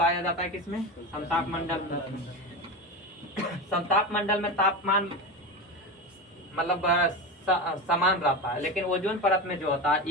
जाता है किसमें, समताप मंडल में। समताप मंडल में तापमान मतलब समान रहता है, लेकिन ओजोन परत में जो होता है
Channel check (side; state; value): both; normal; correlation 0.21